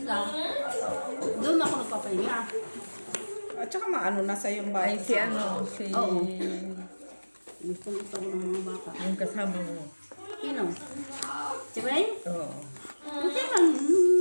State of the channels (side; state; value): both; inverted; correlation -1.00